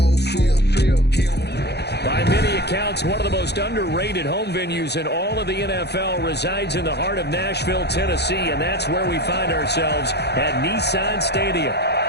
field. By many accounts, one of the most underrated home venues in all of the NFL resides in the heart of Nashville, Tennessee, and that's where we find ourselves at Nissan Stadium.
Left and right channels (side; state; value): right; late; 0.48 ms